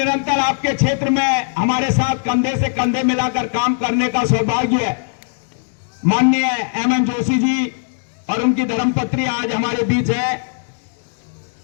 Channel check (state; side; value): silent; right; digital silence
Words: आपके क्षेत्र में हमारे साथ कंधे से कंधे मिलाकर काम करने का सौभाग्य है। माननीय एमएन जोशी जी और उनकी धर्मपत्नी आज हमारे बीच है।